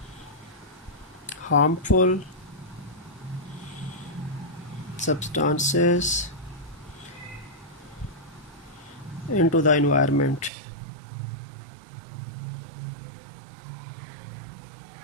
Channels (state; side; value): drops out; left; at 10.5 s